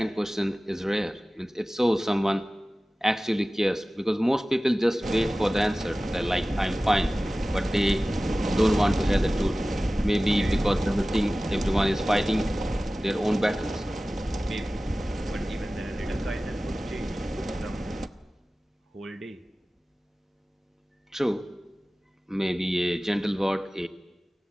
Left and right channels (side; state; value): both; normal; correlation 0.97